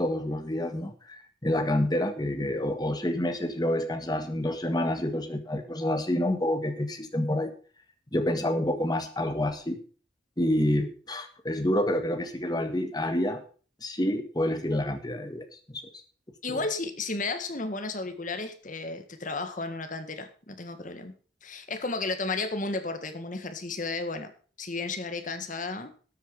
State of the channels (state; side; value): normal; both; correlation 0.67